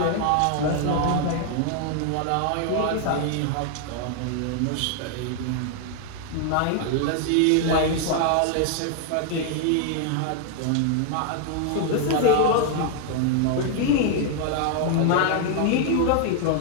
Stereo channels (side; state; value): both; different; correlation 0.00